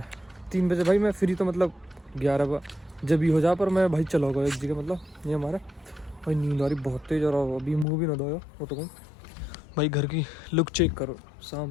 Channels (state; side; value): drops out; right; at 7.9 s